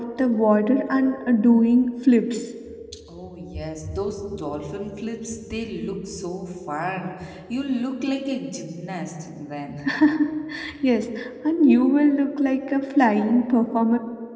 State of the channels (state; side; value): identical; both; correlation 1.00